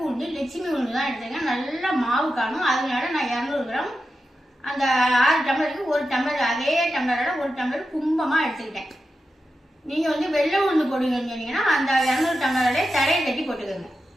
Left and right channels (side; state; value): both; normal; correlation 0.90